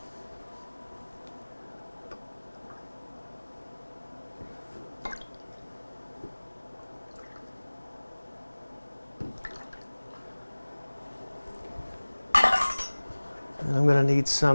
And I'm going to need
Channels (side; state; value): both; inverted; correlation -1.00